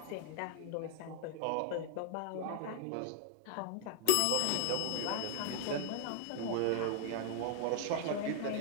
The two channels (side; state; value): both; different; correlation -0.01